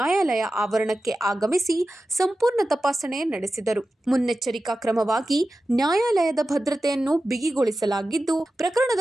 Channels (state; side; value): normal; both; correlation 0.93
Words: ಆವರಣಕ್ಕೆ ಆಗಮಿಸಿ ಸಂಪೂರ್ಣ ತಪಾಸಣೆ ನಡೆಸಿದರು. ಮುನ್ನೆಚ್ಚರಿಕಾ ಕ್ರಮವಾಗಿ ನ್ಯಾಯಾಲಯದ ಭದ್ರತೆಯನ್ನು ಬಿಗಿಗೊಳಿಸಲಾಗಿದ್ದು,